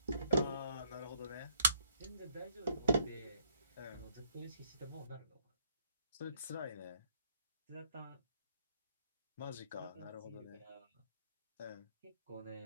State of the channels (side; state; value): both; inverted; correlation -0.68